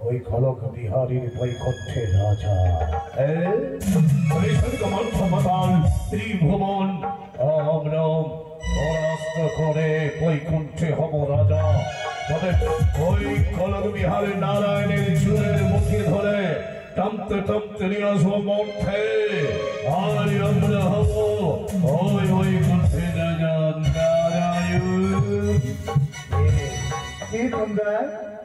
ওই খলক বিহারীর বৈকুণ্ঠের রাজা। ত্রিভুবন আমরা পরাস্ত করে বৈকুণ্ঠে হব রাজা। তবে ওই খলক বিহারের নারায়ণের চুলের মুখে ধরে টানতে টানতে নিয়ে আসবো মঠে। আর আমরা হব ওই বৈকুণ্ঠে রাজা নারায়ণ।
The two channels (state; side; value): identical; both; correlation 1.00